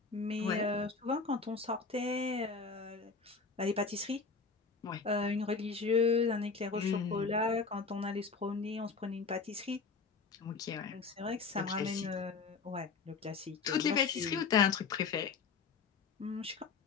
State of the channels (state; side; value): quieter; right; 4.8 dB